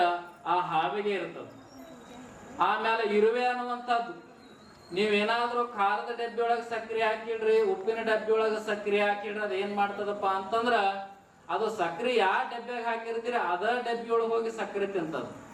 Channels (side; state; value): both; identical; correlation 1.00